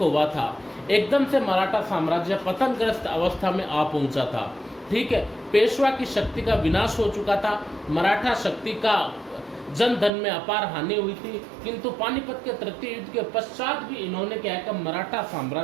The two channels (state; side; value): drops out; left; at 10.1 s